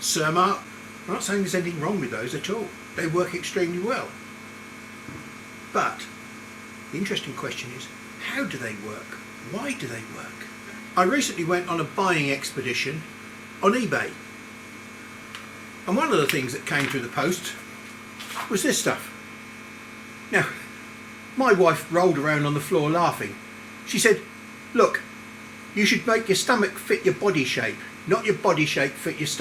I'm not saying there's anything wrong with those at all. They work extremely well. But the interesting question is, how do they work? Why do they work? I recently went on a buying expedition on eBay, and one of the things that came through the post was this stuff. Now, my wife rolled around on the floor laughing. She said, "Look, you should make your stomach fit your body shape, not your body shape fit your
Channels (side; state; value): both; identical; correlation 1.00